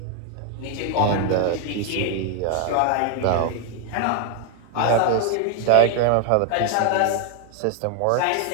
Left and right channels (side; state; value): both; different; correlation 0.00